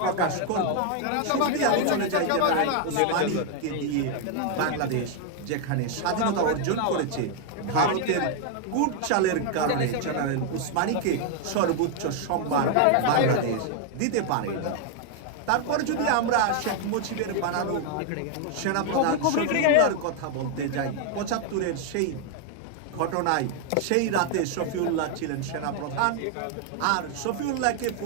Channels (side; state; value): both; different; correlation 0.00